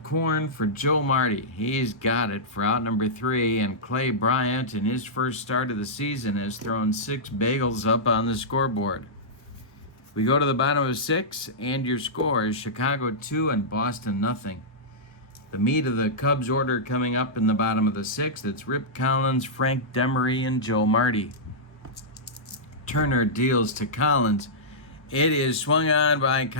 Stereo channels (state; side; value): normal; both; correlation -0.13